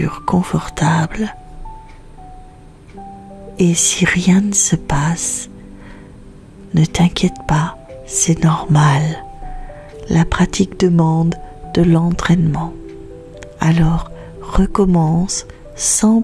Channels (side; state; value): both; identical; correlation 1.00